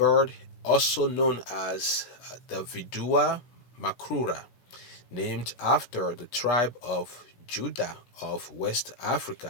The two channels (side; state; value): right; late; 17 ms